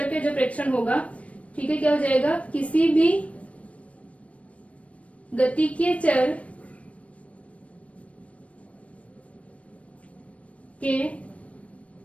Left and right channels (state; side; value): late; right; 0.064 ms